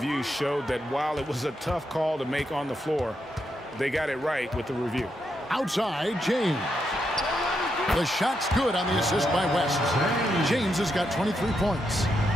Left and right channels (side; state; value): both; normal; correlation 0.82